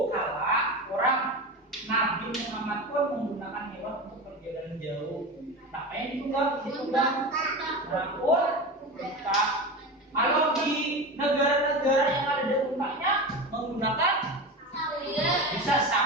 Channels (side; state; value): both; normal; correlation 0.25